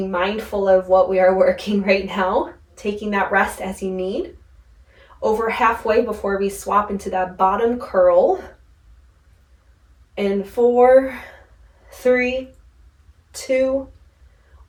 mindful of what we are working right now, taking that rest as you need. Over halfway before we swap into that bottom curl. In 4, 3, 2,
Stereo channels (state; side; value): identical; both; correlation 1.00